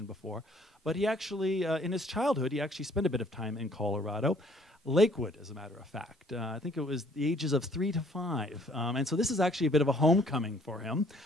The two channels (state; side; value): normal; both; correlation 0.60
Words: before, but he actually, in his childhood, he actually spent a bit of time in Colorado. Lakewood, as a matter of fact. I think it was the ages of 3 to 5. And so this is actually a bit of a homecoming for him.